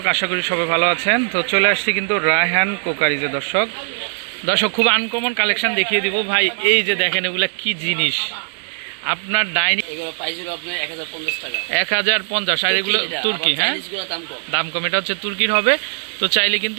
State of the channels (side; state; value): left; silent; digital silence